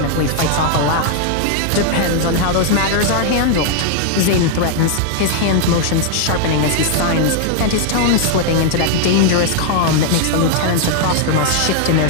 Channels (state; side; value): different; both; correlation 0.00